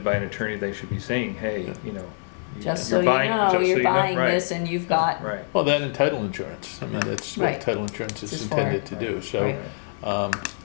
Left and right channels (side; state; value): right; silent; 62 dB below the other